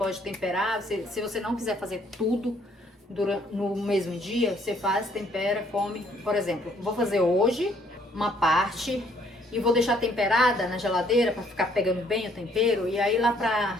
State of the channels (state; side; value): normal; both; correlation 0.65